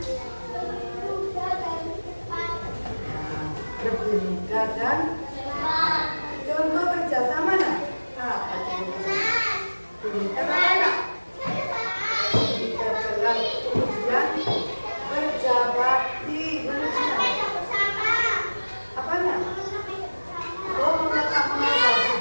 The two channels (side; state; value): both; inverted; correlation -1.00